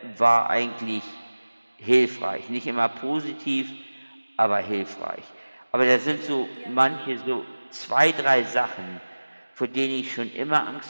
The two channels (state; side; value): inverted; both; correlation -1.00